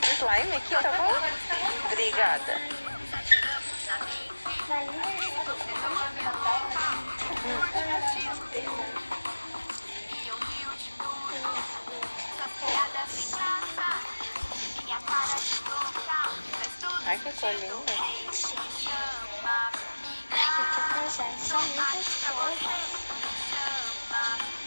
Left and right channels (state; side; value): inverted; both; correlation -1.00